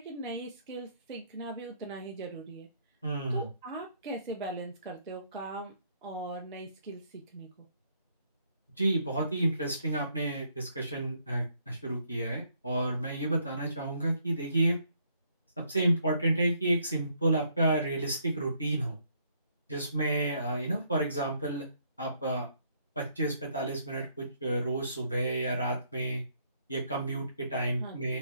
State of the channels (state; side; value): inverted; both; correlation -0.70